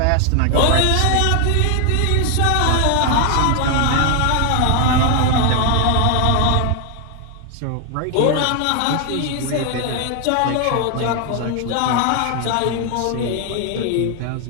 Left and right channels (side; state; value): both; different; correlation 0.00